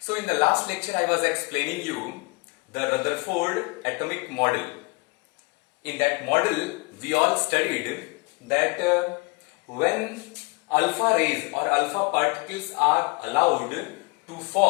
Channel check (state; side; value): quieter; right; 29.5 dB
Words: So in the last lecture I was explaining you the Rutherford atomic model. In that model we all studied that when alpha rays or alpha particles are allowed to